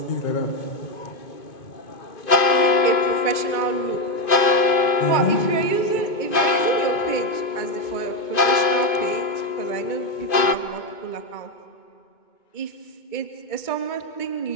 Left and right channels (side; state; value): right; late; 2.5 ms